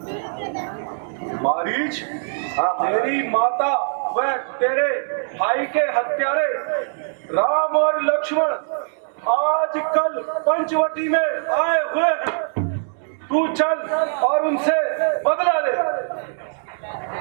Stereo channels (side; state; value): left; silent; digital silence